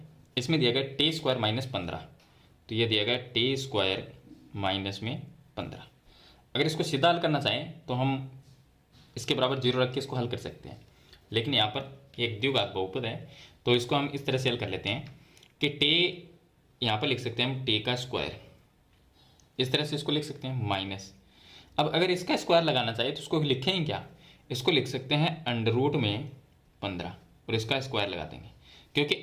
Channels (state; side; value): identical; both; correlation 1.00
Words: इसमें दिया गया t² - 15, तो ये दिया गया t² - 15। अगर इसको सीधा हल करना चाहें तो हम इसके बराबर 0 रख के इसको हल कर सकते हैं, लेकिन यहाँ पर एक द्विघात बहुपद है तो इसको हम इस तरह से हल कर लेते हैं कि टे यहाँ पर लिख सकते हैं हम टे का स्क्वायर, इस तरह से इसको लिख सकते हैं माइनस। अब अगर इसका स्क्वायर लगाना चाहिए तो इसको लिखेंगे क्या, इसको लिख सकते हैं अंडर रूट में 15 और इसका स्क्वायर लगा देंगे, क्योंकि